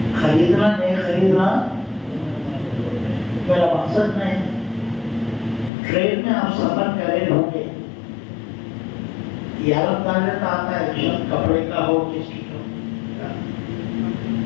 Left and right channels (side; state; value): right; drops out; at 5.7 s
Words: خریدنا نہیں خریدنا میرا مقصد نہیں. ٹرین میں آپ سفر کرے ہوں گے، یہ عالم تعلق آتا ہے کپڑے کا ہو کس کی ہو.